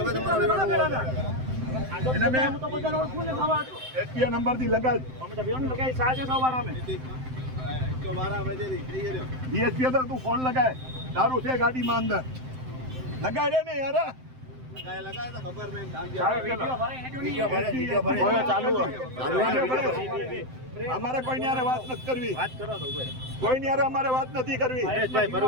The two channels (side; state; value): left; late; 7.8 ms